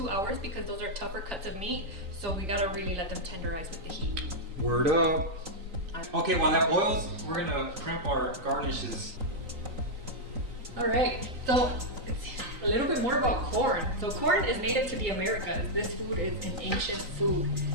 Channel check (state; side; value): late; left; 3.9 ms